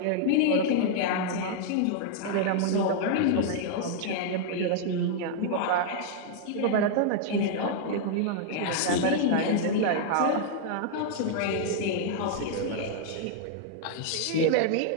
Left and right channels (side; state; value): both; different; correlation -0.01